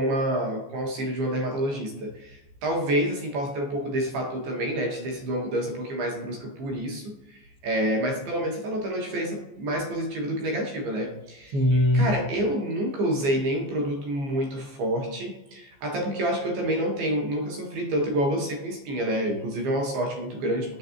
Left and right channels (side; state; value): left; late; 15 ms